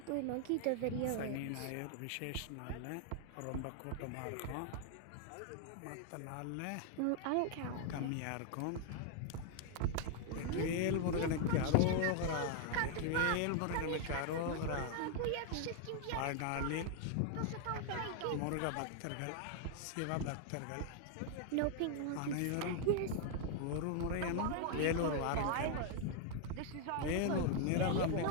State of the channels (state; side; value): different; both; correlation 0.00